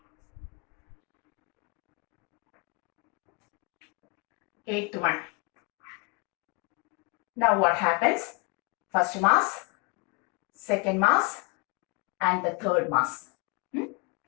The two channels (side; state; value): right; quieter; 30.6 dB